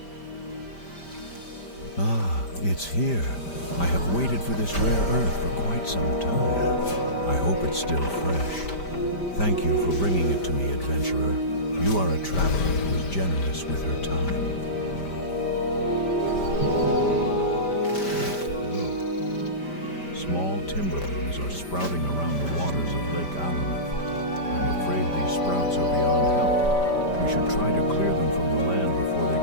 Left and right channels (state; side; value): late; right; 5.1 ms